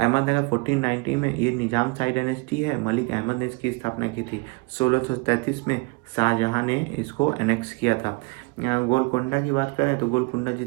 1490 में ये निजाम शाही डायनेस्टी है। मलिक अहमद ने इसकी स्थापना की थी। 1633 में शाहजहां ने इसको एनेक्स किया था। गोलकोंडा की बात करें तो गोलकोंडा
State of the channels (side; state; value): left; quieter; 28.6 dB